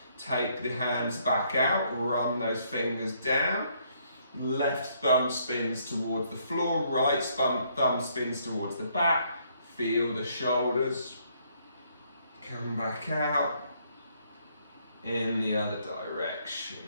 Take the hands back out. Run those fingers down. Left thumb spins towards the floor. Right thumb spins towards the back. Feel the shoulders. Come back out. In the other direction.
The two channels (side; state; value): both; inverted; correlation -0.69